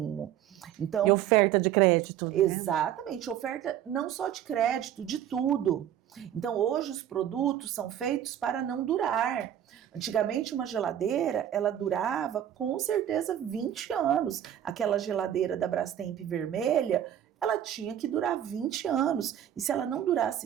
Então, e oferta de crédito. Exatamente, oferta não só de crédito, de tudo. Então, hoje os produtos são feitos para não durar. Antigamente, uma geladeira, ela durava com certeza 20 anos. Aquela geladeira da Brastemp vermelha, ela tinha que durar 20 anos. E se ela não durasse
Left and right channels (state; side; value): quieter; left; 10.7 dB